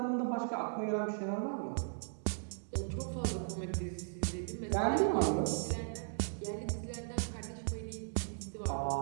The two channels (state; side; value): silent; left; digital silence